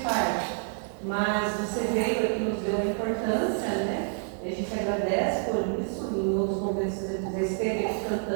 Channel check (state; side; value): silent; left; 59 dB below the other